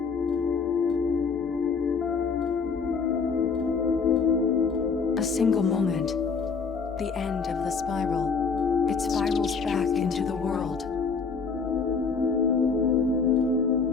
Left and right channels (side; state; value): right; quieter; 5.2 dB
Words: A single moment. The end of the spiral. It spirals back into the world.